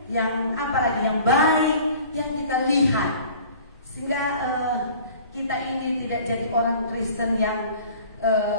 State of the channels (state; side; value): inverted; both; correlation -0.48